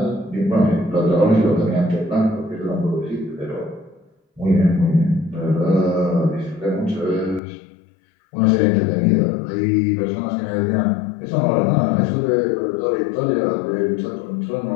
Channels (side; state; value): right; drops out; at 7.4 s